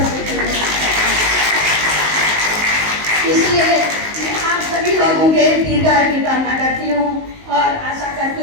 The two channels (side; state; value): left; late; 19 ms